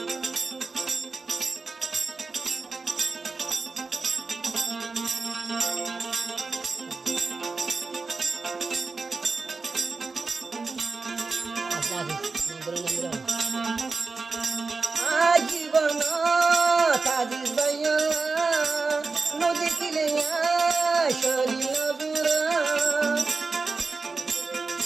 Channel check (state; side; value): quieter; left; 4.2 dB